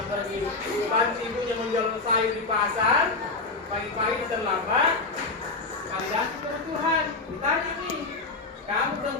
pergi bantu ibunya menjual sayur di pasar, pagi-pagi terlambat, validasi kebutuhan. Ditanya nih, kamu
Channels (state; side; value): quieter; right; 3.7 dB